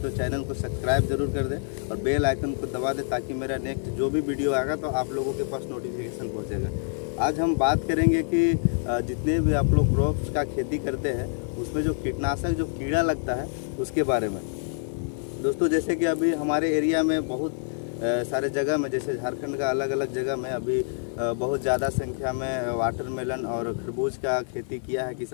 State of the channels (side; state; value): right; silent; digital silence